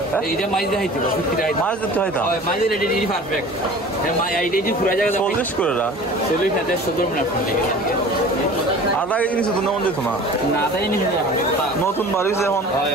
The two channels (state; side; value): normal; both; correlation 0.42